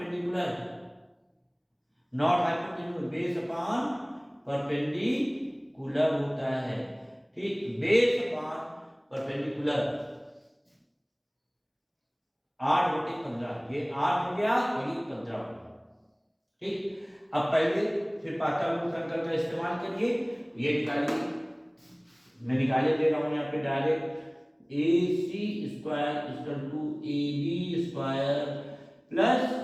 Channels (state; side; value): identical; both; correlation 1.00